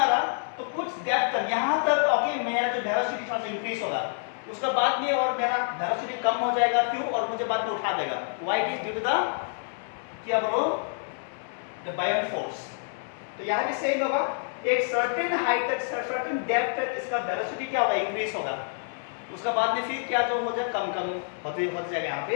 तो कुछ डेप्थ तक यहाँ तक, ओके, मेरा जो वेलोसिटी थोड़ा सा इंक्रीज होगा, उसके बाद में और मेरा वेलोसिटी कम हो जाएगा, क्यों, और मुझे बाद में उठा देगा, why it is due to the क्या बोलो, द बायोन फोर्स। तो यहाँ भी सेम होगा, एक सर्टेन हाइट तक, सर्टेन डेप्थ तक इसका वेलोसिटी क्या होगा, इंक्रीज होगा, उसके बाद में फिर क्या जो हो जाए, कम होते जाएगा यहाँ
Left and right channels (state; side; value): silent; right; 60 dB below the other